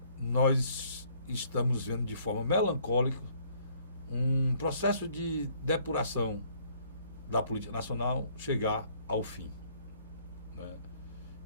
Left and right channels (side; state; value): both; inverted; correlation -0.62